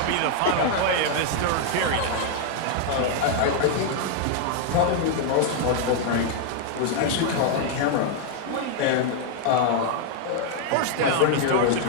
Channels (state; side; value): different; both; correlation 0.00